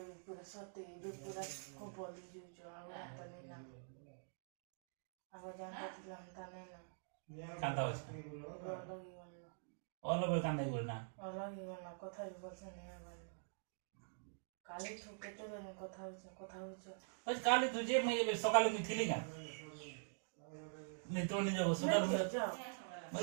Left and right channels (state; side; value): silent; left; digital silence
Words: পুরো সতে যে পুরো কো বদলি যুজ আগরা তনি না আগো জানতা ছিলাম তানে না কান্দা হচ্ছে লগি বলনা অলবে কান্দাই বল না লগি বলনা কথা বলছে নে বলনা কালি ঠকেতে বলে কথা হচ্ছে ওই কালি তুই যে মেয়ে সকালে আমি থিলি না নি তো নি যাবো সকালে যাও